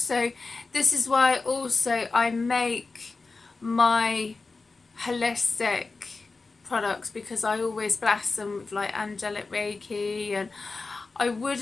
this is why also I make my holistic products, because I always bless them with like angelic Reiki, and I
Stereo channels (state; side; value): quieter; right; 3.9 dB